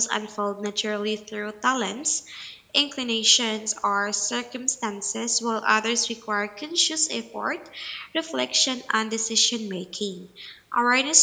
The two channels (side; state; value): both; identical; correlation 1.00